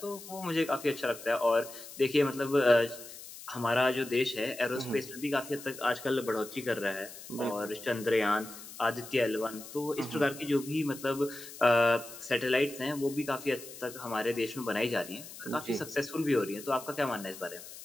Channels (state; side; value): noise; left; hiss, 14 dB below the sound